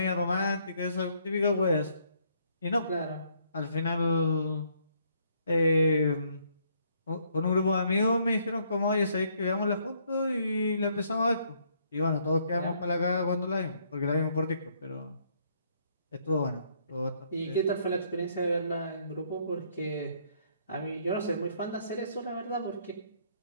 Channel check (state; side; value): inverted; both; correlation -0.68